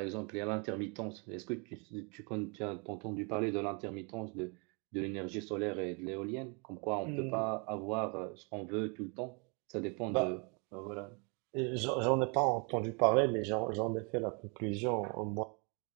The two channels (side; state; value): left; quieter; 33.9 dB